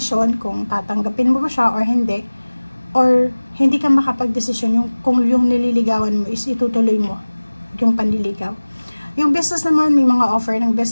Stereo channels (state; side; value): inverted; both; correlation -1.00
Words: kung tatanggapin mo ba siya or hindi, or hindi ka makapag-desisyon kung yung nililigawan mo is itutuloy mo yung panliligaw. Yung business naman, may mga offer ng